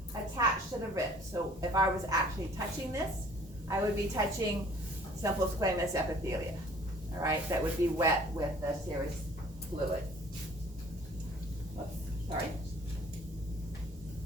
attached to the rib. So if I was actually touching this, I would be touching simple squamous epithelia, all right? That would be wet with the serous fluid. Oops, sorry.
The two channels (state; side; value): normal; both; correlation 0.54